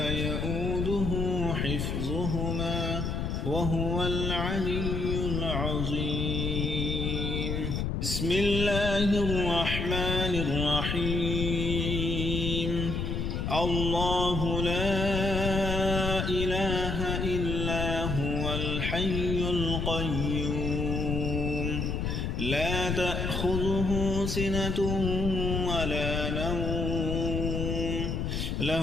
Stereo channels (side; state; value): left; noise; rumble, 1 dB below the sound